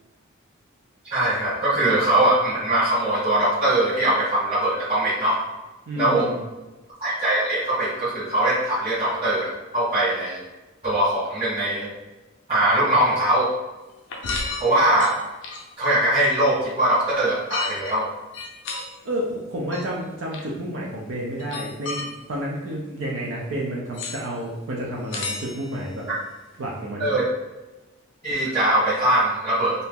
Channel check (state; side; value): normal; both; correlation 0.06